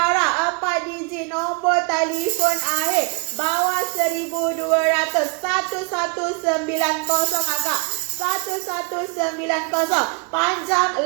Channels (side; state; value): left; quieter; 32.8 dB